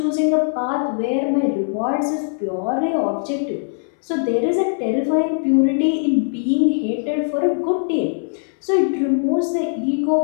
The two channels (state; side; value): silent; right; digital silence